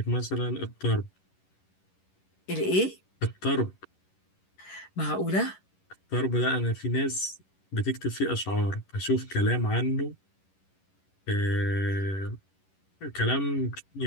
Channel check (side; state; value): right; late; 11 ms